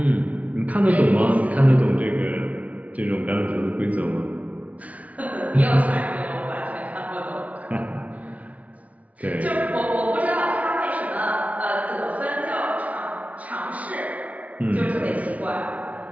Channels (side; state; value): left; late; 0.069 ms